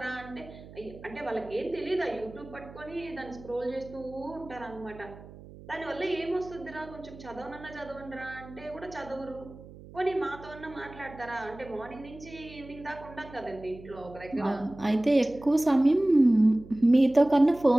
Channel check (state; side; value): noise; right; hum, 18 dB below the sound